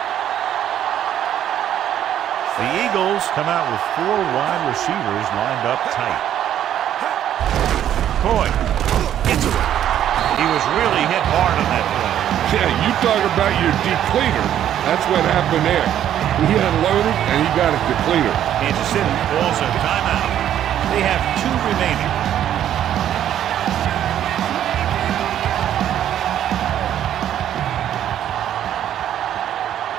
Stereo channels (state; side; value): quieter; left; 10.8 dB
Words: The Eagles come out with 4 wide receivers lined up tight. Coy gets away. He was really hit hard on that play. Yeah, you talk about your depleter. That's what happened there. He unloaded and he got a depleter. Kansas City calls a timeout. They have 2 remaining.